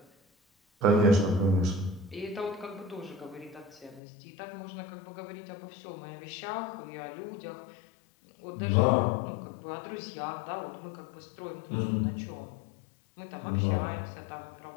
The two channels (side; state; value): right; drops out; at 4.0 s